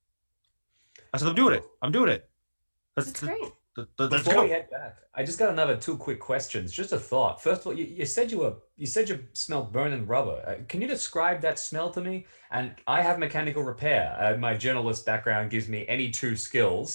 I said, I'm doing it. That's great. Let's Before we go. head back, I just got another two quick questions. Just a thought. First of all, you said you smelled burning rubber. Can you describe that smell to me? And I have mechanical repair. My journalist background gives me any two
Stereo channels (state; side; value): inverted; both; correlation -1.00